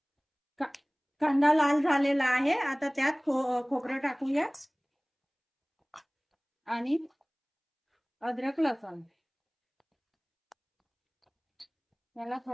कांदा लाल झालेला आहे, आता त्यात खोबरं टाकूया आणि अद्रक लसूण याला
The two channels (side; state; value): both; identical; correlation 1.00